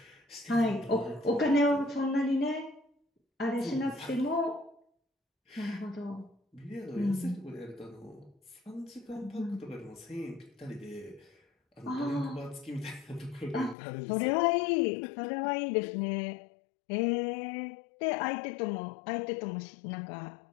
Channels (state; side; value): drops out; right; at 13.8 s